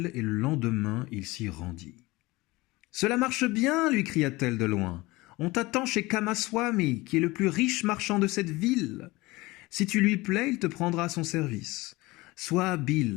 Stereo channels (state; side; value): quieter; right; 21.3 dB